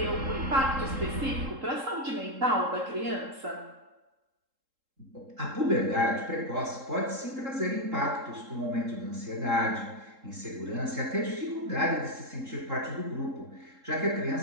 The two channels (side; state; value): left; late; 3.7 ms